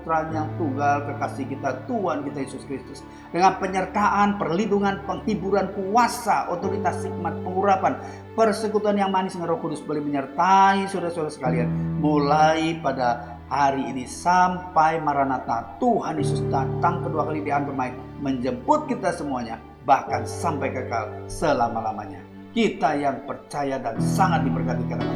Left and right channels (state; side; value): identical; both; correlation 1.00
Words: yang tunggal, kekasih kita, Tuhan kita Yesus Kristus. Dengan penyertaan, perlindungan, penghiburan, kuasa, otoritas, hikmat, pengurapan, persekutuan yang manis dengan Roh Kudus boleh menyertai saudara-saudara sekalian, mulai pada hari ini sampai Maranatha. Tuhan Yesus datang kedua kali di akhir bermain, menjemput kita semuanya, bahkan sampai kekal selama-lamanya. Kita yang percaya dan sangat diberkati karena